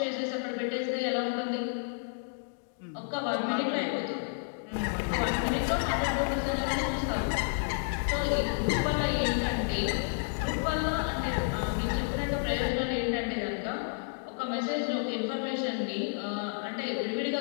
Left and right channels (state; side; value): silent; right; digital silence